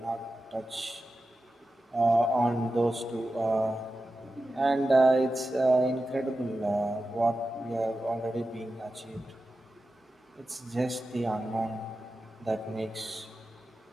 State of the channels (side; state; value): both; normal; correlation 0.92